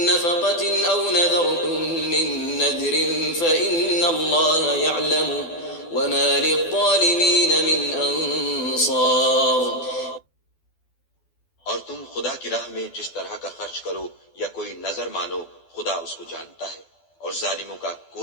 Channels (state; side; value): late; right; 12 ms